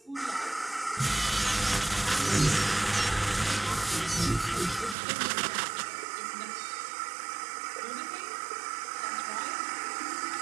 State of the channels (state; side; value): drops out; left; at 5.0 s